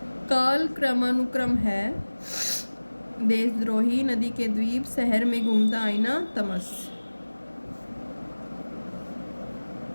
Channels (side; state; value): both; inverted; correlation -1.00